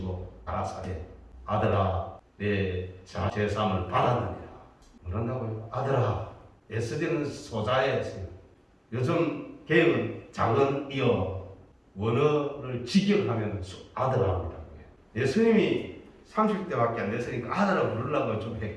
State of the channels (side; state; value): both; identical; correlation 1.00